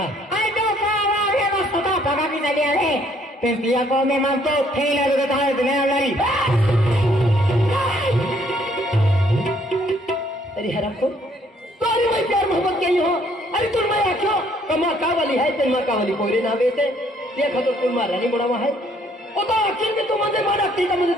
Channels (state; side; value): normal; both; correlation 0.65